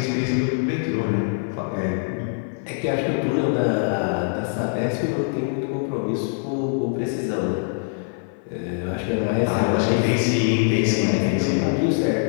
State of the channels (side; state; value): right; silent; 60 dB below the other